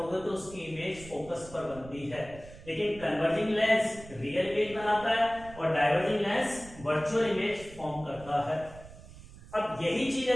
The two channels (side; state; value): right; noise; rumble, 18 dB below the sound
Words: तो उसकी इमेज फोकस पर बनती है, लेकिन कन्वर्जिंग लेंस रियल इमेज बनाता है और diverging lens virtual image form करता है। अब यही चीज